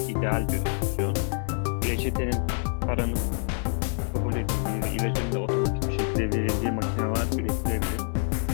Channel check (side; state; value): right; silent; 60 dB below the other